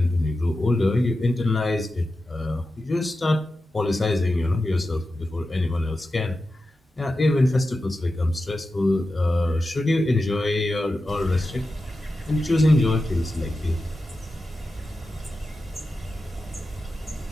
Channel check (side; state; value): both; normal; correlation 0.92